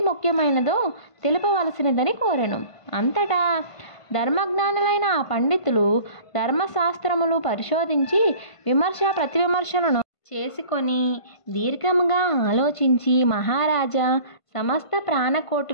ముఖ్యమైనదో తెలుపవలసినదని కోరెను. అంతటా ధర్మజ్ఞానులైన ఆ పండితులు ధర్మశాస్త్రములు పరిశోధించి విమర్శ ప్రతివిమర్శలను చేసుకొని దీర్ఘముగా ఆలోచించి, మహారాజా, సమస్త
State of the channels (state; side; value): late; right; 1.5 ms